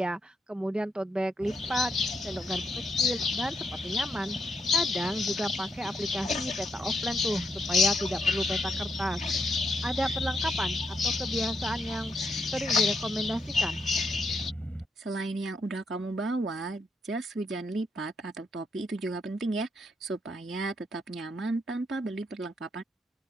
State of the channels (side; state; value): both; normal; correlation 0.79